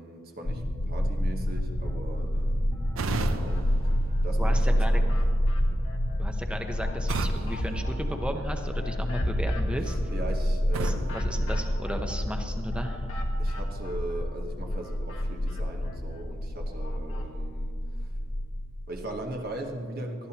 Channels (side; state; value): both; normal; correlation 0.91